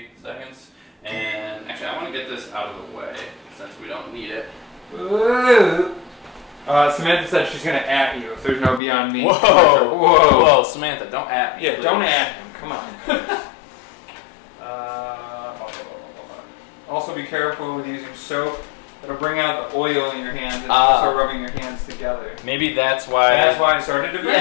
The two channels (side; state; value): right; drops out; at 8.8 s